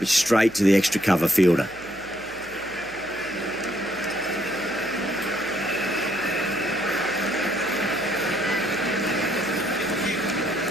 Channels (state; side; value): noise; right; hum, 21 dB below the sound